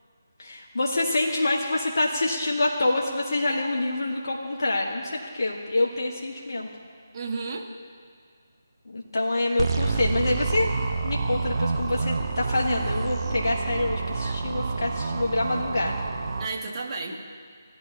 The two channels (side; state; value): both; inverted; correlation -0.89